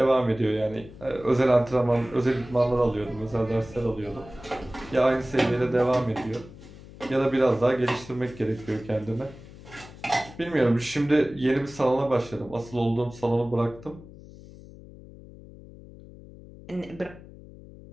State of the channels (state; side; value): noise; left; hum, 18 dB below the sound